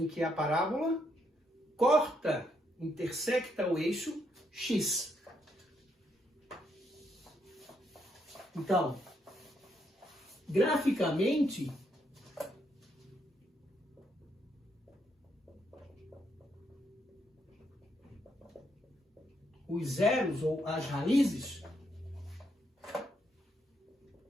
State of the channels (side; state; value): both; normal; correlation 0.76